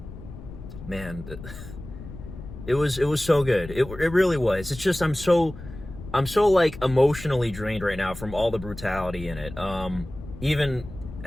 Man, it was so good. It really was. It's just I'm so like emotionally drained right now from all the brutality in it. Even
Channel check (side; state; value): left; noise; rumble, 13 dB below the sound